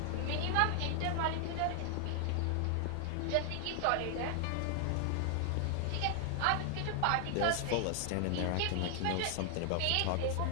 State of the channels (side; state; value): both; different; correlation 0.00